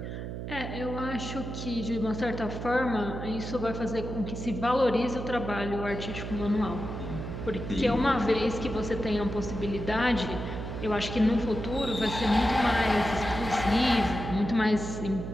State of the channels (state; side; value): noise; right; hum, 6 dB below the sound